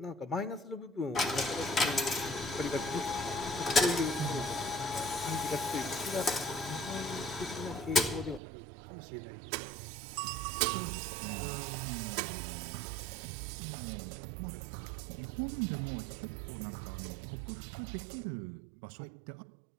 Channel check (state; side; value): drops out; left; at 8.4 s